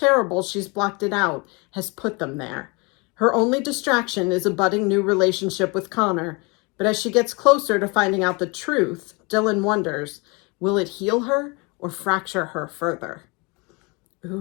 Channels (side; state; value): right; quieter; 29.0 dB